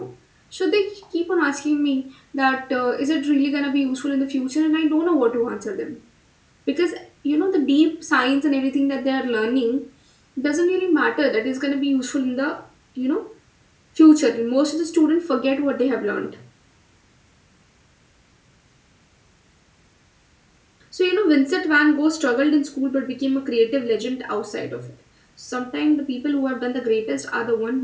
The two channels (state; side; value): identical; both; correlation 1.00